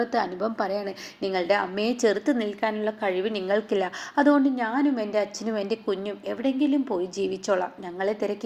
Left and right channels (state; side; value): identical; both; correlation 1.00